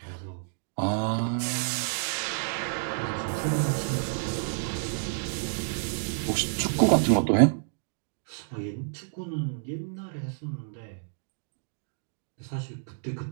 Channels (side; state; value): left; silent; digital silence